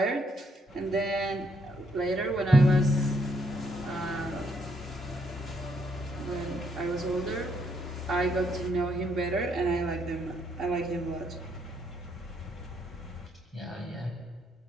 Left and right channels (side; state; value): both; normal; correlation 0.73